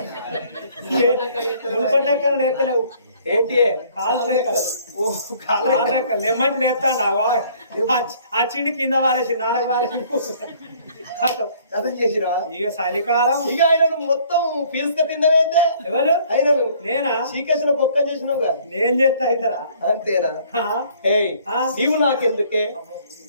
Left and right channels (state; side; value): inverted; both; correlation -0.58